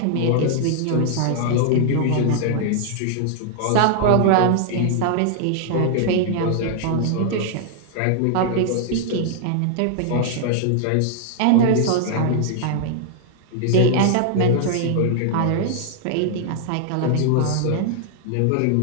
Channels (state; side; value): different; both; correlation 0.00